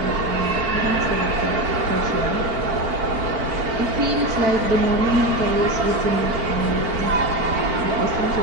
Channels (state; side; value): late; left; 4.4 ms